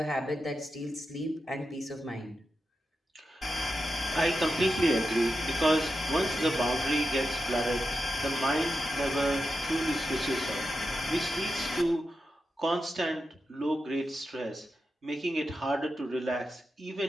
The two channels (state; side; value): normal; both; correlation 0.89